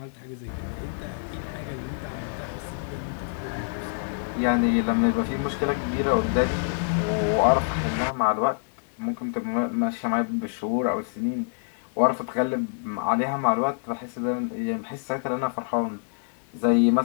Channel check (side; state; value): right; silent; digital silence